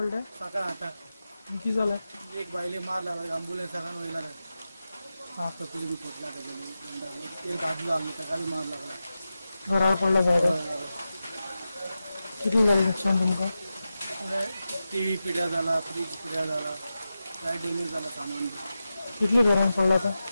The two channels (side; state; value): both; inverted; correlation -0.92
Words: पडले? सकाळ 8 किती झालंय? एक बाईले मार लागला ॲम्ब्युलन्स सगळ्यांना व्हायला हा तकली बी फुटला त्याच्यामुळे एक दादू लागला त्याला बी मार लागला घरावर पडला झाड. किती झालं नुकसान तुमका? टी व्ही पिढ्या झाला फ्रीज पिढ्या झाला काय डॅमेज झाला सामान किती घरांना पडला? तर